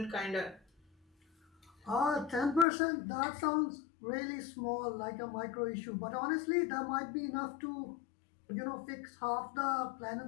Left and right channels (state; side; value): drops out; right; at 2.7 s